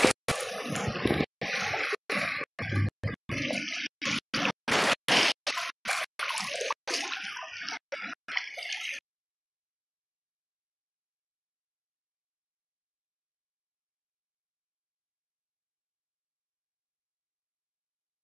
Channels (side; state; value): both; identical; correlation 1.00